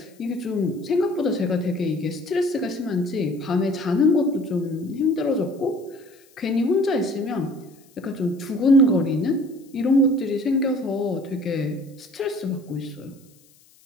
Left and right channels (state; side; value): noise; left; hiss, 30 dB below the sound